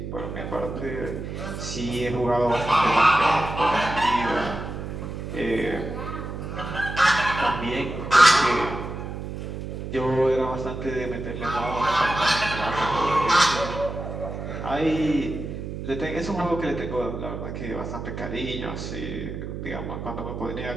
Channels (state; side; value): noise; right; hum, 7 dB below the sound